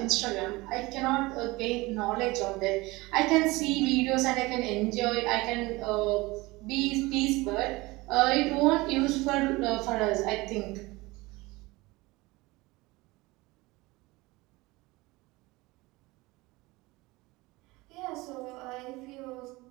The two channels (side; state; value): left; quieter; 21.9 dB